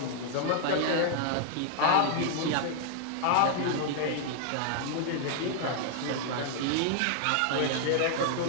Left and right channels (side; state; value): both; different; correlation 0.00